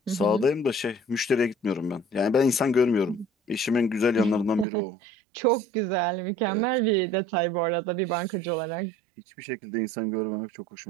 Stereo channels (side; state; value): left; drops out; at 4.7 s